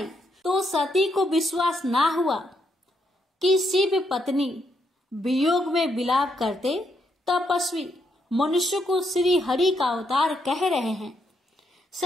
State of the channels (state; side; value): normal; both; correlation 0.77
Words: तो सती को विश्वास ना हुआ कि शिव पत्नी वियोग में विलाप करते तपस्वी मनुष्य को श्री हरि का अवतार कह रहे हैं।